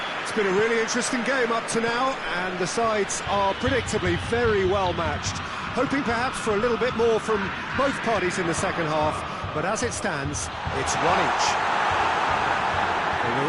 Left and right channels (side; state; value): both; identical; correlation 1.00